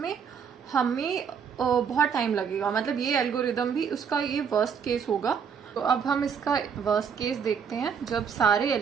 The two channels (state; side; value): quieter; left; 6.9 dB